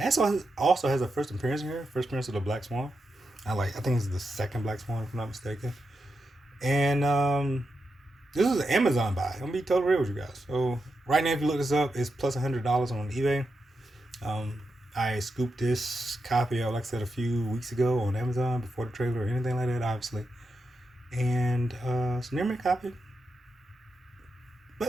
has a first appearance here. First appearance of the Black Swan. I think it's the second Black Swan, if I'm not mistaken. And this is an Amazon buy. I'm gonna be totally real with you guys. So right now, if you look this up, it's plus $100 on eBay. I scooped this copy out, like I said, a few weeks ago on Amazon before the trailer or anything like that, obviously. And it's a near mint copy.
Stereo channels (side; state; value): both; normal; correlation 0.87